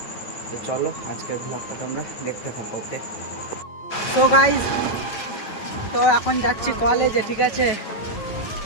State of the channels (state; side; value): late; right; 9.1 ms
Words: তো চলো আজকের ব্লগটা তোমরা দেখতে থাকো, ওকে। তো গাইজ তো এখন যাচ্ছি কলেজে, ঠিক আছে।